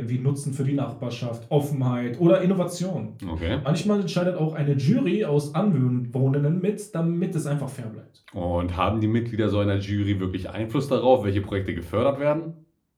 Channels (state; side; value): identical; both; correlation 1.00